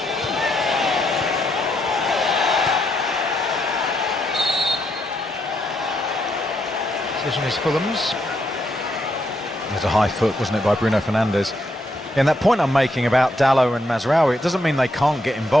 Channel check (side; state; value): both; normal; correlation 0.77